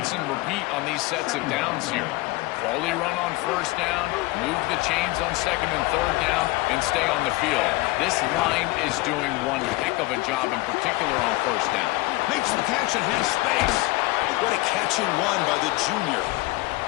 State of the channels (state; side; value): quieter; right; 21.2 dB